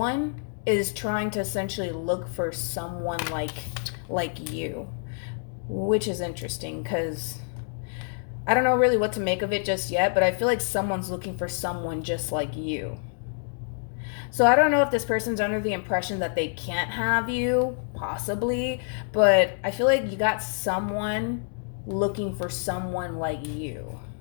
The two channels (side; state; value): right; silent; 60 dB below the other